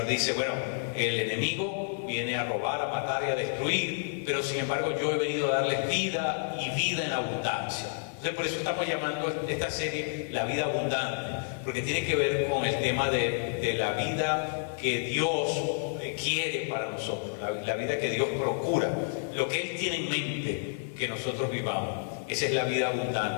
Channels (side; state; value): right; silent; 58 dB below the other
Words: dice, bueno, el enemigo viene a robar, a matar y a destruir, pero sin embargo yo he venido a darles vida y vida en abundancia. Entonces por eso estamos llamando esta serie La Vida Abundante, porque tiene que ver con el tema de la vida que Dios quiere para nosotros, la vida que Dios procura, lo que Él tiene en mente que nosotros vivamos. Esa es la vida